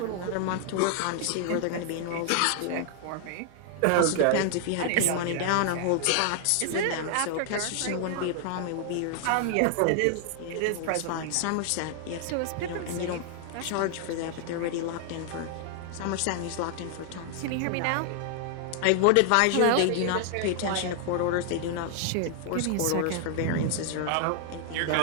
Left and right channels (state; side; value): different; both; correlation 0.00